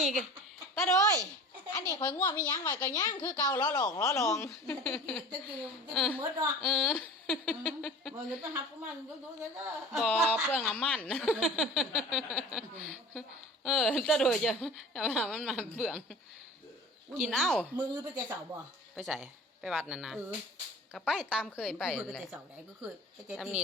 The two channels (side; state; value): both; normal; correlation 0.40